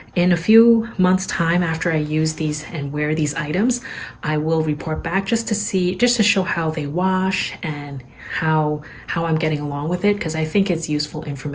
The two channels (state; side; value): identical; both; correlation 1.00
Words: in a few months' time after I use these and wear these items, I will report back just to show how they wash and how I'm getting along with it, because I think it's useful